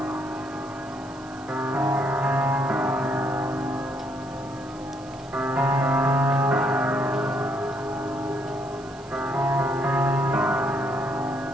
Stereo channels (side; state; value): right; noise; hiss, 24 dB below the sound